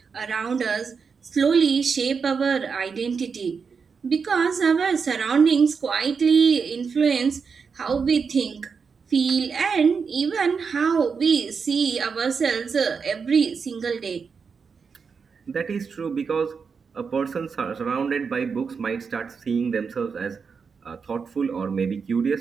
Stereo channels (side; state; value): left; quieter; 5.6 dB